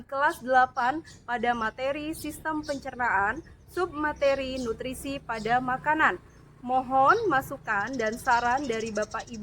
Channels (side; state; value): both; identical; correlation 1.00